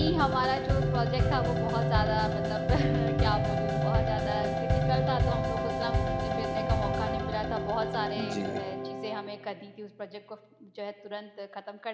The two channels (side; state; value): both; identical; correlation 1.00